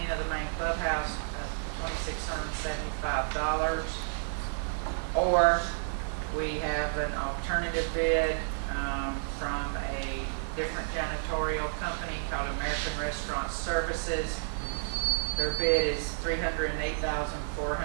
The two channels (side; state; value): left; silent; digital silence